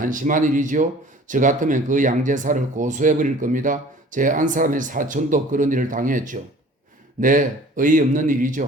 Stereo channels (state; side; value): normal; both; correlation 0.48